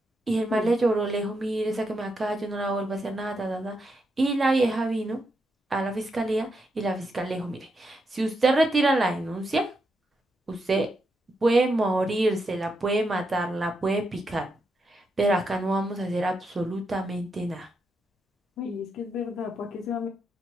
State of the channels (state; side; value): normal; both; correlation 0.83